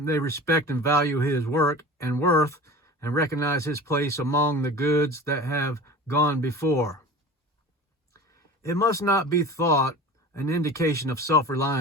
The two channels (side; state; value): both; normal; correlation 0.37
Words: they respect and value his work and worth, and recognize his place among the goods that have gone before. It must not be thought an indication of